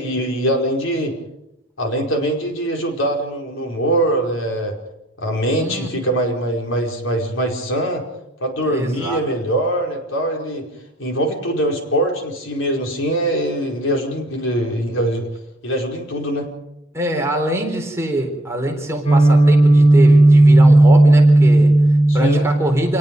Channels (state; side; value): normal; both; correlation 0.74